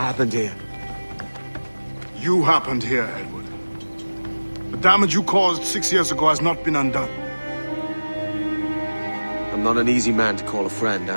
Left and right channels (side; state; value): both; inverted; correlation -1.00